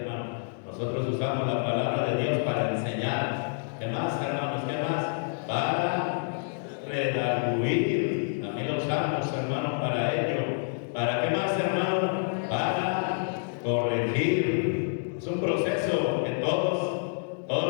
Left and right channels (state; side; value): silent; right; digital silence